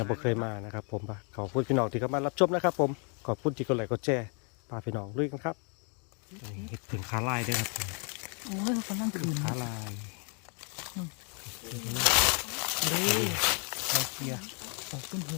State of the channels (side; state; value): right; quieter; 37.8 dB